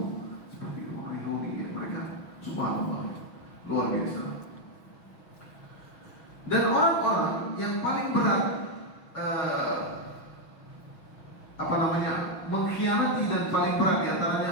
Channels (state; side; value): late; right; 6.0 ms